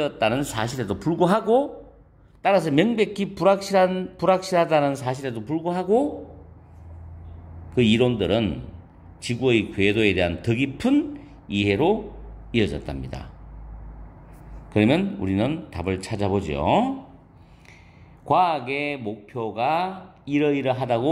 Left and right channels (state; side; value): identical; both; correlation 1.00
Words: 사실에도 불구하고, 따라서 명백히 불확실하다는 사실에도 불구하고 그 이론들은 지구의 궤도에 대한 더 깊은 이해로 이어졌답니다. 그러면 우리는 답을 찾아보죠. 과학의 목표가